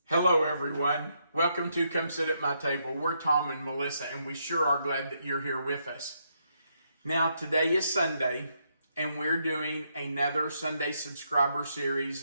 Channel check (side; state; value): both; inverted; correlation -0.77